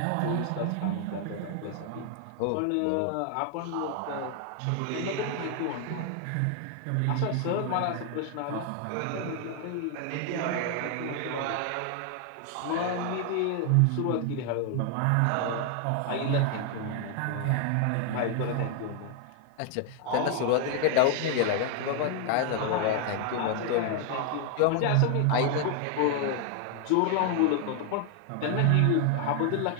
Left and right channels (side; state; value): both; different; correlation 0.00